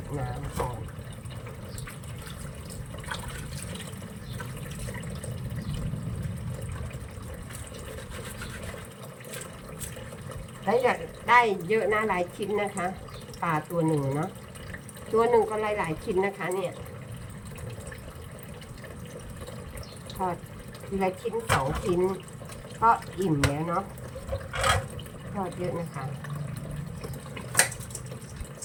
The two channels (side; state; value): both; identical; correlation 1.00